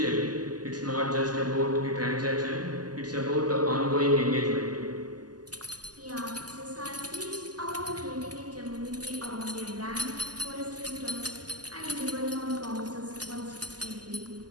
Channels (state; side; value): late; left; 0.69 ms